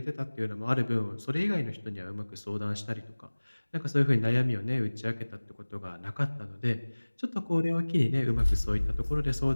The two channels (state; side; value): inverted; both; correlation -1.00